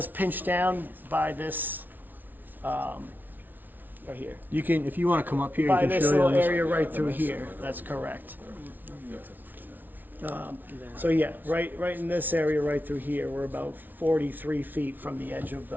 pinch down by this, right here. You can, if you wanna come up here, you By can this show you little on this. area right through here, that's correct. So yeah, right in this area right through here, we're about 43 feet from the edge of,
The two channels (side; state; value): left; late; 0.085 ms